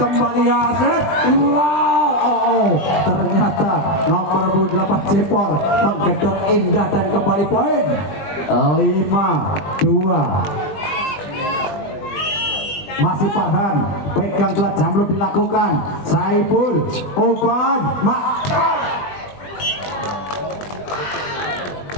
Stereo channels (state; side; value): late; right; 20 ms